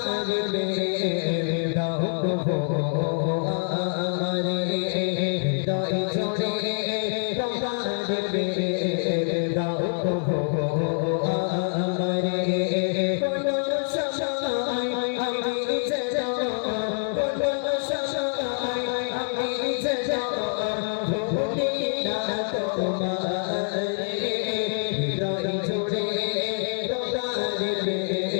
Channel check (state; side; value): silent; right; digital silence